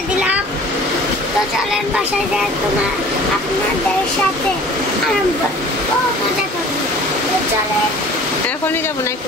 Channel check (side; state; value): both; normal; correlation 0.46